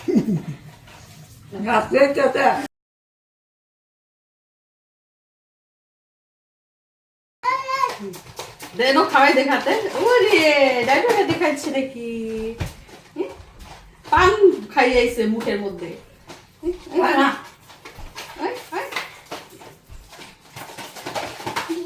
দেনো খাওয়াই দেখাতে। ওরে ডাইভারটা দেখাচ্ছে নাকি? পান খাইয়াইছে মুখের মধ্যে।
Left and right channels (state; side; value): identical; both; correlation 1.00